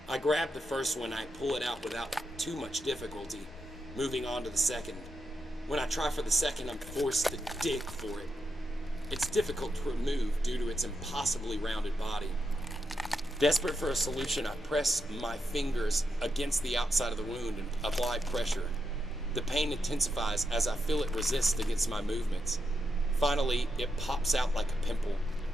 I grab the first one, I pull it out without too much difficulty, moving on to the second. When I try for the second, I'm forced to dig for it. It's difficult to remove due to its impossibly rounded body. Desperate for a solution, I press my fingers against the outside of the wound and apply pressure. The pain intensifies as I feel it resist against my movements. Finally, it pops out like a pimple.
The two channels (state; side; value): normal; both; correlation 0.84